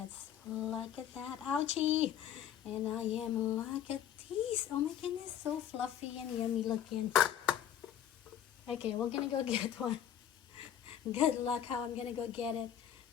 Look at that. Ouchie. And I am, look at these. Oh my goodness, so fluffy and yummy looking. Okay, we're gonna go get one. Good luck how I'm gonna go get it.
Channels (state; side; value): quieter; right; 9.9 dB